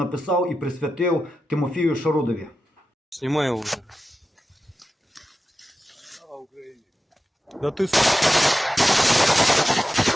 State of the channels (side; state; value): both; normal; correlation 0.92